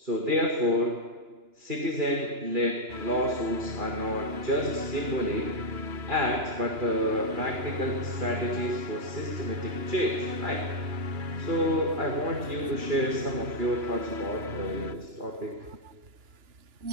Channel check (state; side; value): late; left; 2.9 ms